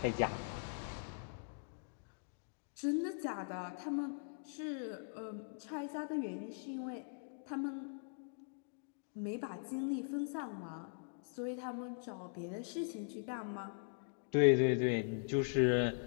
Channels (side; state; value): right; silent; digital silence